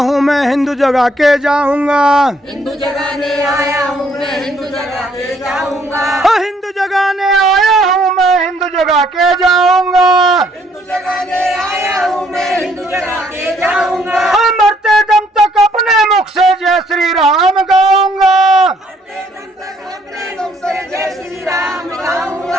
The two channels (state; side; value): normal; both; correlation 0.66